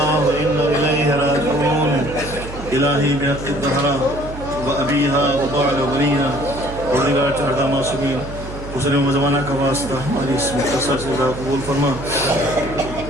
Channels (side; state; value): right; noise; hum, 11 dB below the sound